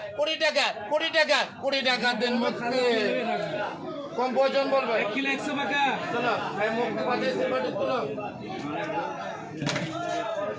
20 টাকা 20 টাকা 20 টাকা দেন মুক্তি কম ওজন বলবে 1 কিলো 100 টাকা চলো এই মুক্তি বাঁচে এসে বড় তোলো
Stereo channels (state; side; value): identical; both; correlation 1.00